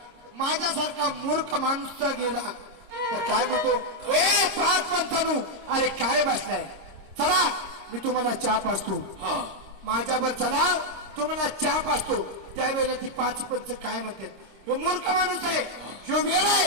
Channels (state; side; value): late; left; 26 ms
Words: माझ्यासारखा मूर्ख माणूस जर गेला तर काय म्हणतो, ए 5 पंचानू, अरे काय बसलाय, चला मी तुम्हाला चहा पाजतो. हा. माझ्यावर चला, तुम्हाला चहा पाजतो. त्यावेळेला ती 5 पंच काय म्हणते, ह्यो मूर्ख माणूस आहे, ह्यो वेळ